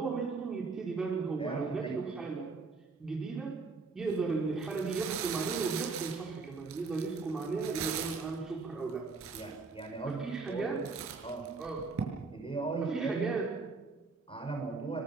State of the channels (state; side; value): quieter; left; 4.3 dB